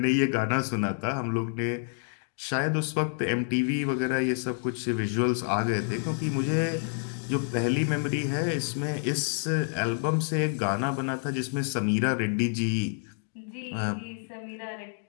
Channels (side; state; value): right; silent; digital silence